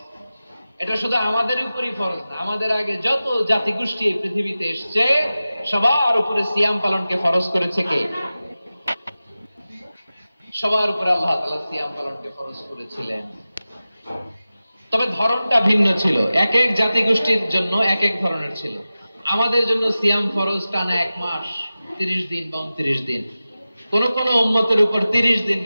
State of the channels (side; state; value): both; inverted; correlation -0.95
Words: এটা শুধু আমাদের উপরই ফরজ না, আমাদের আগে যত জাতিগোষ্ঠী এই পৃথিবীতে এসছে সবার উপরে সিয়াম পালনকে ফরজ করেছে কে? সবার উপরে আল্লাহ তাআলা সিয়াম পালনকে ফরজ করেছিলেন। তবে ধরনটা ভিন্ন ছিল, এক এক জাতিগোষ্ঠীর জন্য এক এক ধরনের ছিল। আমাদের জন্য সিয়াম ফরজ টানা 1 মাস 30 দিন বা 29 দিন। কোন কোন উম্মতের উপর 30 দিন